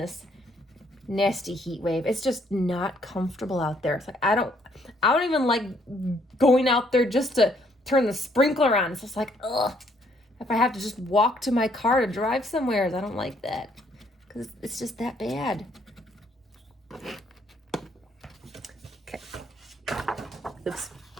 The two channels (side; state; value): both; normal; correlation 0.67